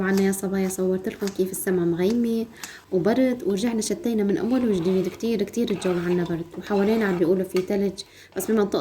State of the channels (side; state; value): both; identical; correlation 1.00